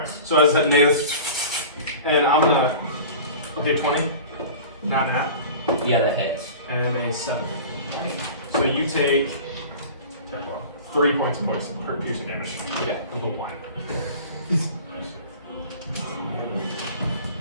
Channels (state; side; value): inverted; both; correlation -0.39